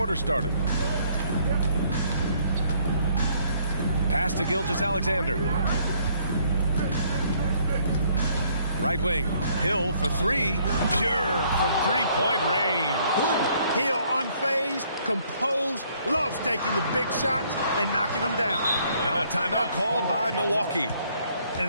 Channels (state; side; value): inverted; both; correlation -0.65